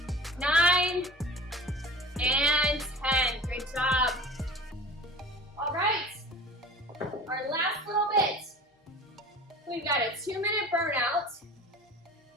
9, and 10. Great job. All right, our last little bit. We've got a 2-minute burnout.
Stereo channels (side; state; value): both; normal; correlation 0.39